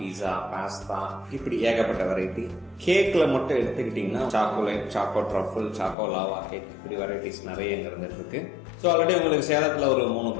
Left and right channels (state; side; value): drops out; right; at 6.0 s